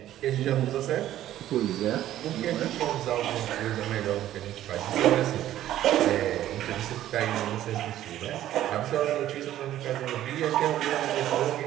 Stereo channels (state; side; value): quieter; left; 12.8 dB